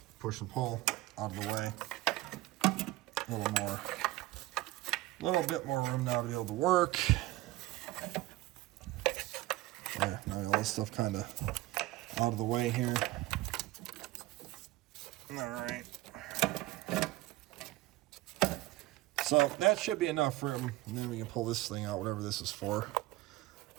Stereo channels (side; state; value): left; quieter; 18.0 dB